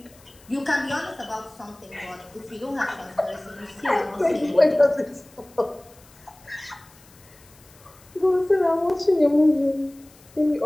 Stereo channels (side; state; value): left; noise; hiss, 26 dB below the sound